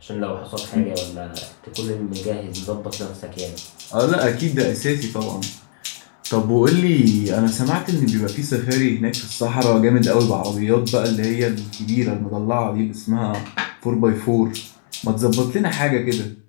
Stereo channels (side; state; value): right; silent; digital silence